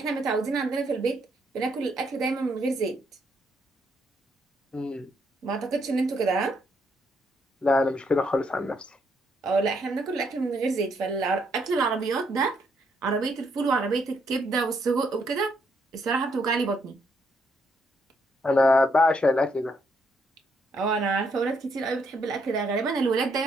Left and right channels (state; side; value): normal; both; correlation 0.74